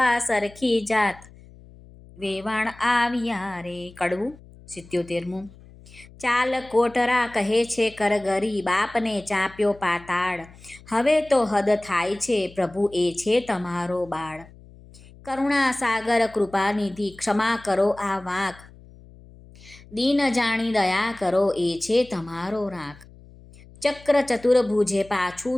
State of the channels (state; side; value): noise; left; hum, 22 dB below the sound